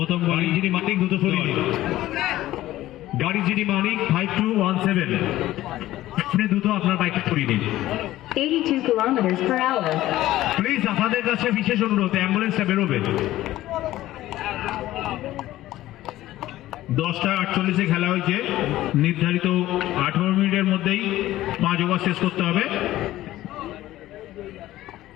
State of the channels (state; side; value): quieter; right; 15.2 dB